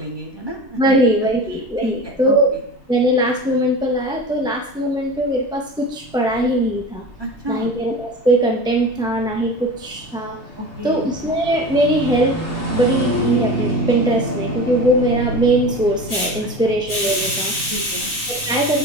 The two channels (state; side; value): normal; both; correlation 0.32